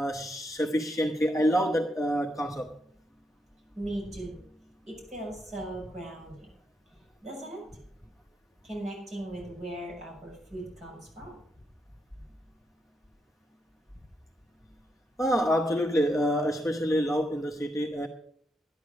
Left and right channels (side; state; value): both; normal; correlation 0.80